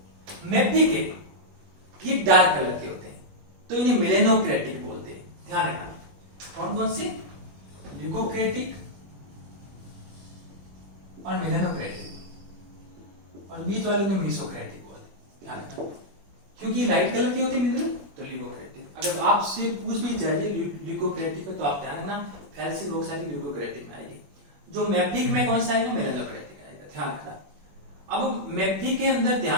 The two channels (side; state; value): left; late; 21 ms